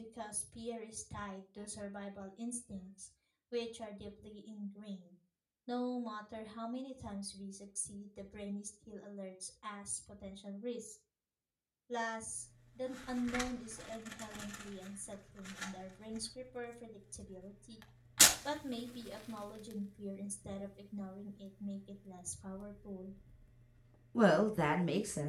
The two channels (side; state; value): both; identical; correlation 1.00